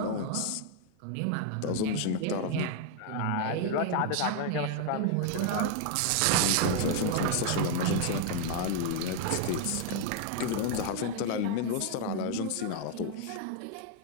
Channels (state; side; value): different; both; correlation 0.00